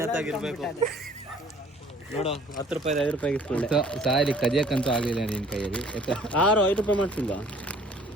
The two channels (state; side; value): normal; both; correlation 0.54